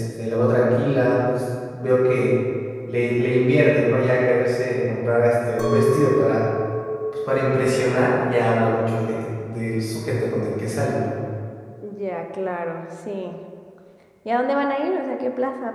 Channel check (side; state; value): both; identical; correlation 1.00